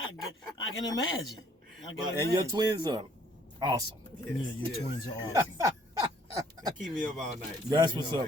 can imagine. And your twins are awesome. Yes, your twins are awesome. They keep me up all night. That's what's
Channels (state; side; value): normal; both; correlation 0.62